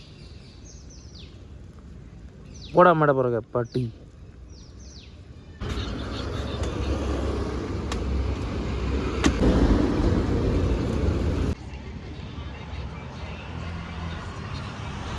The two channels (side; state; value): both; identical; correlation 1.00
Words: പോടാ അമ്മയുടെ പുറകെ പട്ടി.